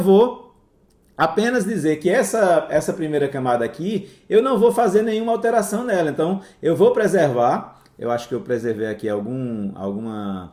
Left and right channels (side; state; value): both; identical; correlation 1.00